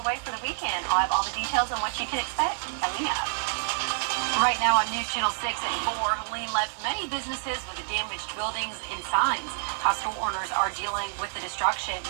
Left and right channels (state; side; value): silent; left; digital silence